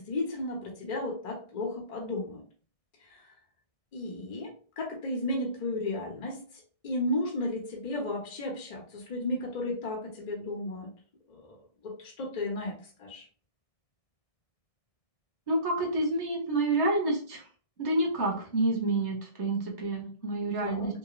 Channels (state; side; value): late; right; 1.6 ms